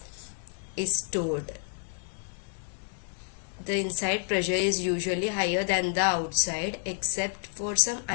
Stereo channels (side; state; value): right; silent; 58 dB below the other